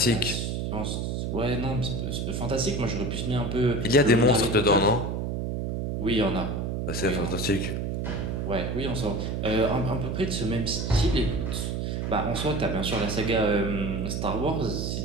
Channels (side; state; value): right; noise; hum, 2 dB below the sound